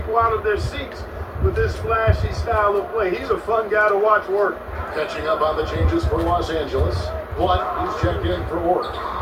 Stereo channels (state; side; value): identical; both; correlation 1.00